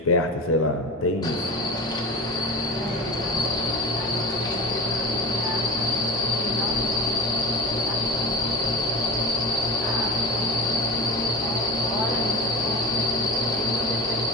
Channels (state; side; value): normal; both; correlation 0.27